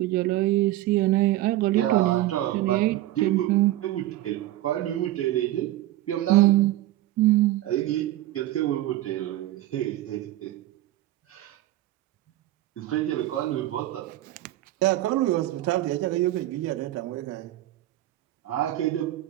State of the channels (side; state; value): left; quieter; 15.4 dB